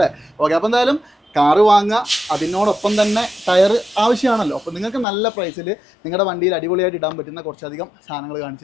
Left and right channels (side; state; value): right; drops out; at 5.1 s